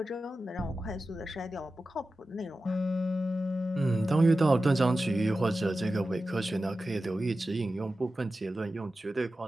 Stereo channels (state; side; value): normal; both; correlation 0.93